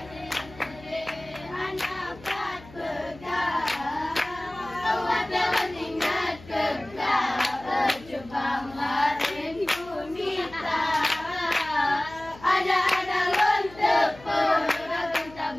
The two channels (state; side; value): noise; left; hum, 20 dB below the sound